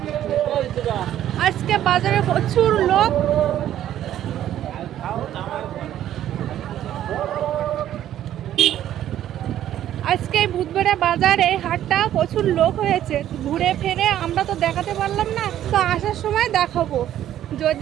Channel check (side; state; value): left; quieter; 11.8 dB